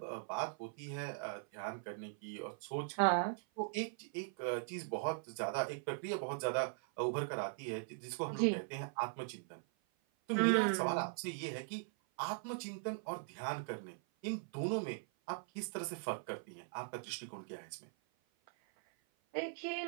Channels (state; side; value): silent; left; 51 dB below the other